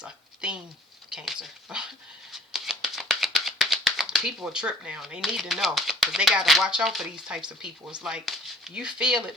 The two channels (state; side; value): normal; both; correlation 0.54